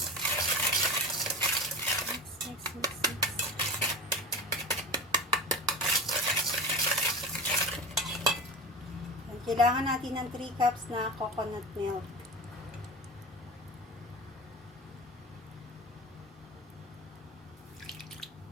Yan, kailangan natin ng 3 cups na coconut milk.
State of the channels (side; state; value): both; normal; correlation 0.31